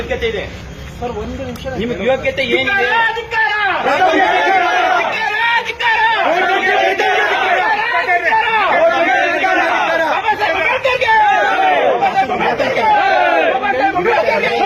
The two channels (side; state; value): both; identical; correlation 1.00